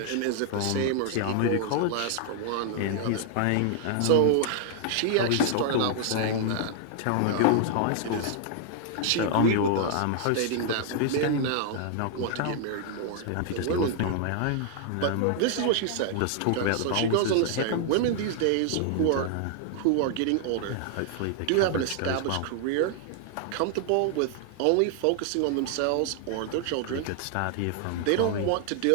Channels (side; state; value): both; different; correlation 0.00